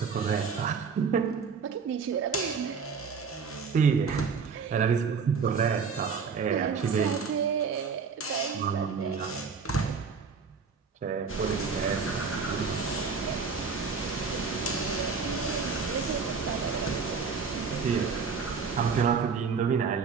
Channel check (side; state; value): left; quieter; 5.5 dB